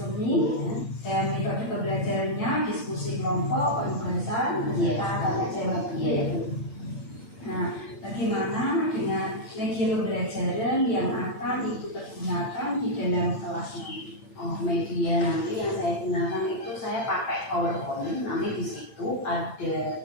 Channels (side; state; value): right; late; 8.8 ms